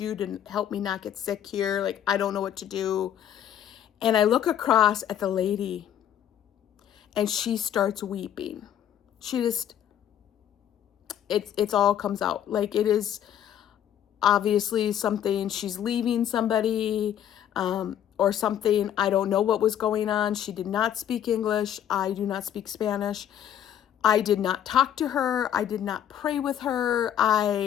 to help me not get sick here. Like, I don't know what to do. And I look across at the lady and she starts weeping. She just, it's all comes out. Like, it is obviously something, she's leaving somebody, or something. I don't know what was going on. She did not speak English. I do not speak Spanish. I did not talk to her. I did not pray with her.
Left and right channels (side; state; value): right; quieter; 10.2 dB